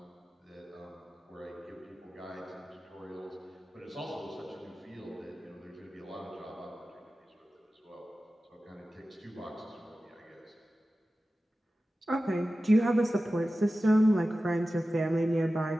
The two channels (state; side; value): normal; both; correlation 0.95